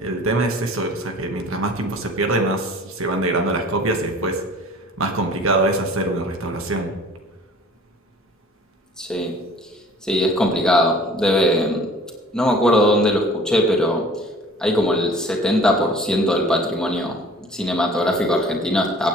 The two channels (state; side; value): normal; both; correlation 0.48